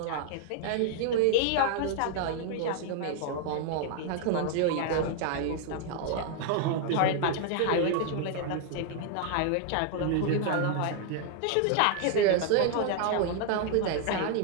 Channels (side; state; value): both; different; correlation 0.00